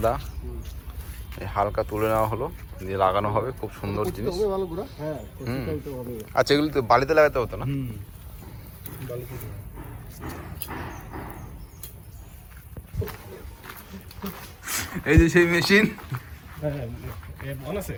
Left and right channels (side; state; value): both; identical; correlation 1.00